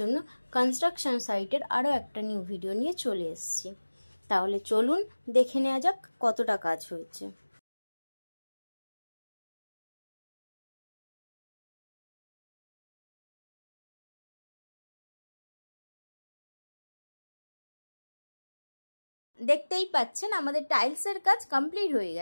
কনস্ট্রাকশন সাইটের আরও একটা নিউ ভিডিও নিয়ে চলে এসেছি। তাহলে চলুন দেখে নেওয়া যাক কতটা কাজ হয়েছে। দেখতেই পাচ্ছেন আমাদের টাইলসের কাজ কমপ্লিট হয়ে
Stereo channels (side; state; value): both; inverted; correlation -1.00